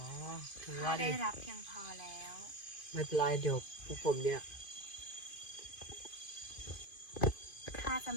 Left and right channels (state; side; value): late; right; 2.5 ms